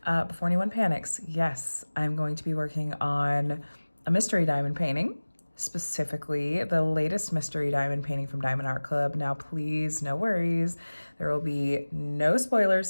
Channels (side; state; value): both; inverted; correlation -1.00